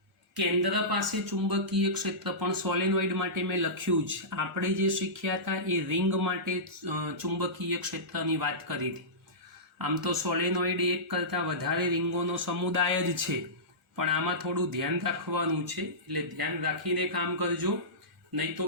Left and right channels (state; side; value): normal; both; correlation -0.19